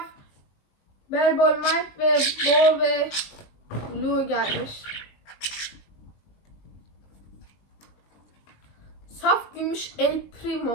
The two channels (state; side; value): late; right; 19 ms